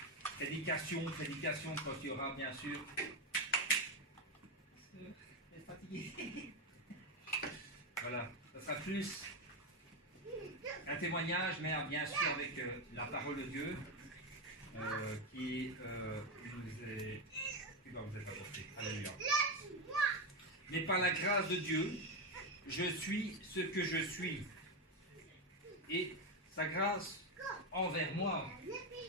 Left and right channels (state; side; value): normal; both; correlation 0.10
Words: prédication quand il y aura bien sûr. Vous êtes fatigué. Voilà, ça sera plus un témoignage, mais bien sûr avec la parole de Dieu qui va vous être apportée. Alléluia. Mais par la grâce de Dieu, je suis ce que je suis. Et sa grâce envers moi